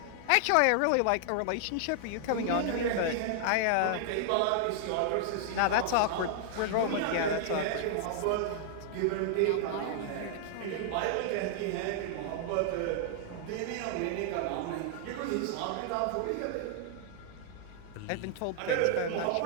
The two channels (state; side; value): different; both; correlation -0.01